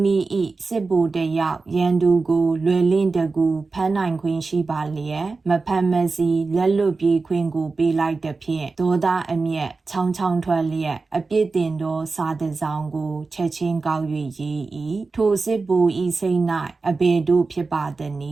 မိ၏စစ်ဗိုလ်တယောက်ရန်သူကိုလွယ်လင့်တကူဖမ်းနိုင်ခွင့်ရှိပါလျက်မဖမ်းမစီလက်လွတ်ပြေးခွင့်ကိုပေးလိုက်သဖြင့်ဒေါသအမျက်ချောင်းချောင်းထွက်လျက်အပြစ်တင်သောစာတစ်စောင်ကိုချက်ချင်းကောက်၍ရေး၏ထိုစစ်ဗိုလ်၏စိတ်၌အဘယ်တို့ဖြစ်ပါသန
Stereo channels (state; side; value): quieter; left; 4.0 dB